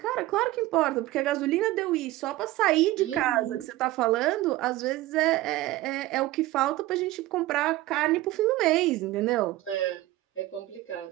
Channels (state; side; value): quieter; left; 17.0 dB